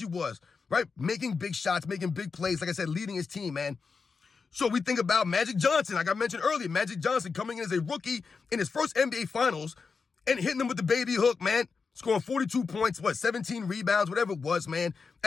was, right? Making big shots, making big plays, like I said, leading his team, man. So we think about Magic Johnson, like I mentioned earlier. Magic Johnson coming in as a rookie in his first NBA Finals and hitting them with the baby hook, man. Scoring 42 points, 17 rebounds, whatever it was, man.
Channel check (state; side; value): quieter; right; 5.0 dB